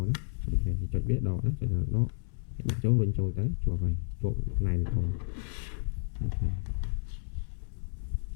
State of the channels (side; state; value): right; silent; 57 dB below the other